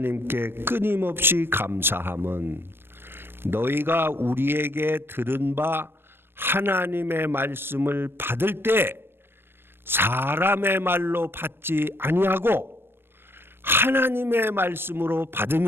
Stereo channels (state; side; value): late; left; 0.10 ms